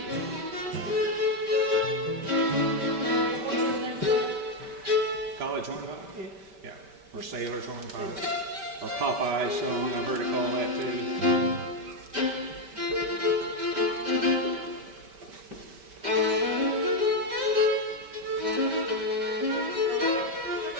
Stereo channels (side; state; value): left; late; 5.1 ms